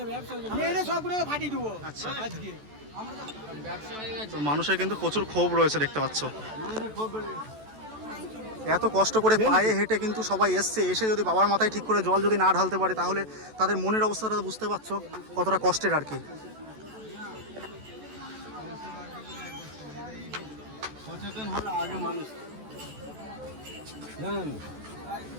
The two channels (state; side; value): late; left; 14 ms